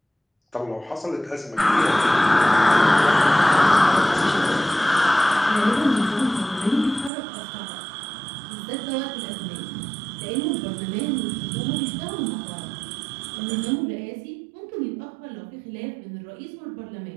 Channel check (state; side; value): drops out; left; at 7.1 s